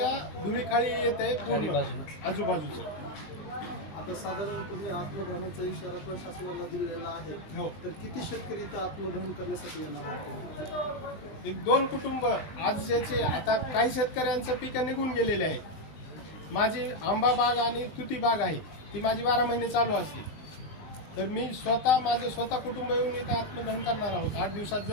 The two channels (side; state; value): right; late; 20 ms